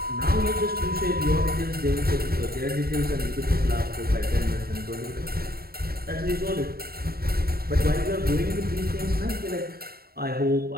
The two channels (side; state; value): left; late; 0.45 ms